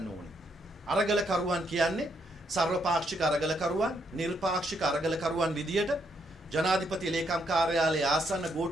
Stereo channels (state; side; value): normal; both; correlation 0.75